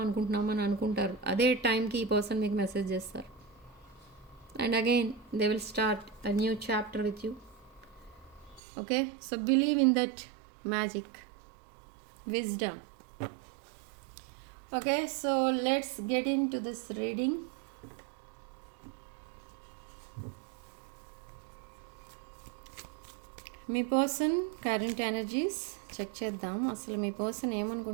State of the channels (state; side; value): drops out; left; at 8.6 s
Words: అనుకుంటున్నామని అనుకుంటారు. అదే టైంకి ఈ పర్సన్ మీకు మెసేజ్ చేస్తారు. And again they will start a new chapter with you. Okay, so believe in that magic, wisdom. Okay, so let's get into this reading. మీ పర్సన్ కరెంట్ ఎనర్జీస్ చెక్ చేద్దాం. అసలు మీ పర్సన్